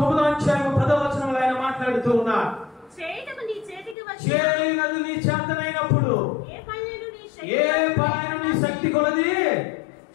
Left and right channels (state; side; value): drops out; right; at 4.0 s